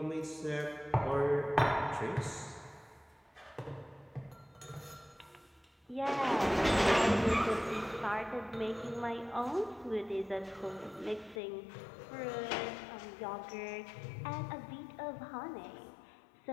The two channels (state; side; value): drops out; right; at 11.4 s